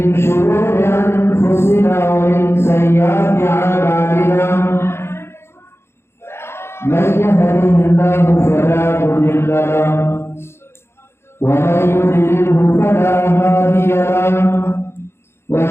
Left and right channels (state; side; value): late; right; 0.12 ms